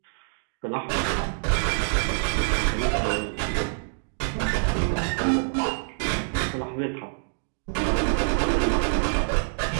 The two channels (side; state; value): left; silent; digital silence